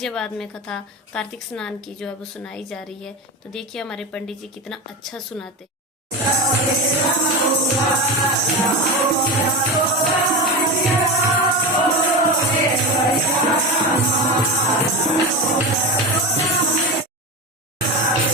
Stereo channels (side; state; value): both; normal; correlation 0.21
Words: में कथा कार्तिक स्नान की जो है वो सुनाई जा रही है। तो देखिए हमारे पंडित जी कितना अच्छा सुनाते।